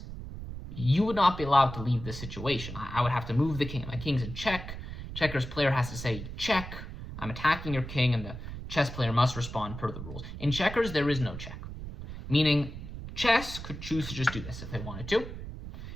you would not be allowed to leave this situation. I would have to move the king. My king's in check. Checkers player has to say, check, I'm attacking your king, and the chess player must respond per the rules. In checkers, there is no check, meaning chess could choose to just do this if they wanted to.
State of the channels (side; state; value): right; noise; rumble, 9 dB below the sound